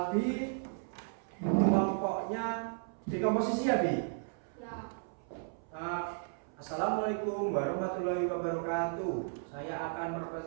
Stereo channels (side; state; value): left; silent; 55 dB below the other